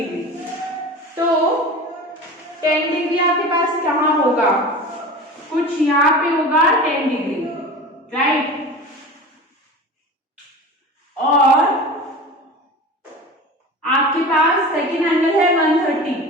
तो 10 डिग्री आपके पास कहाँ होगा, कुछ यहाँ पे होगा 10 डिग्री, राइट। और आपके पास सेकेंड एंगल है 130,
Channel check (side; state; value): both; normal; correlation 0.34